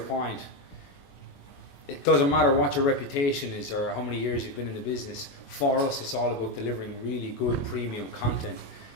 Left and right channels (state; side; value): late; right; 22 ms